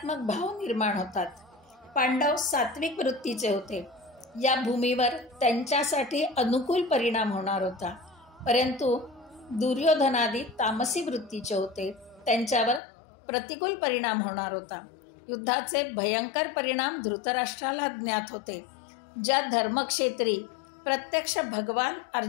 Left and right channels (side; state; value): right; drops out; at 12.8 s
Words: भाव निर्माण होतात. पांडव सात्विक वृत्तीचे होते. या भूमीवर त्यांच्यासाठी अनुकूल परिणाम होणार होता. परंतु दुर्योधनादी तामसी वृत्तीचे होते. त्यांच्यावर प्रतिकूल परिणाम होणार होता. युद्धाचे भयंकर परिणाम धृतराष्ट्राला ज्ञात होते. ज्या धर्मक्षेत्री प्रत्यक्ष भगवान